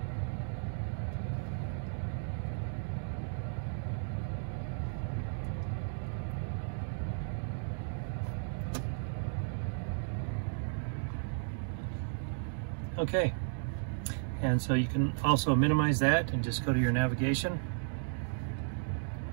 Okay, and so you can also minimize that and just go to your navigation.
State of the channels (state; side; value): silent; left; 55 dB below the other